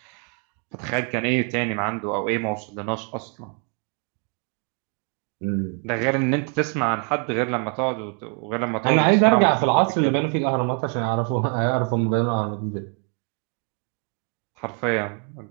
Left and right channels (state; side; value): quieter; left; 39.7 dB